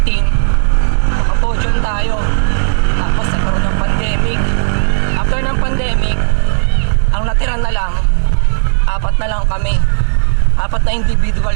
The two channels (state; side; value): silent; left; 72 dB below the other